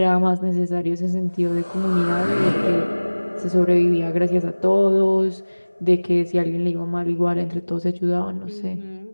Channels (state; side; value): inverted; both; correlation -1.00